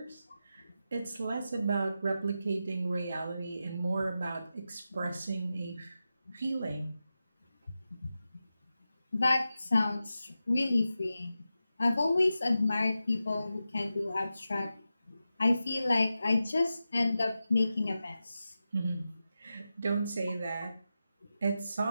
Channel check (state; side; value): inverted; both; correlation -0.91